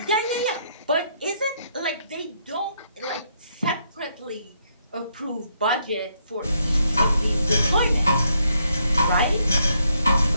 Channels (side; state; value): both; inverted; correlation -0.74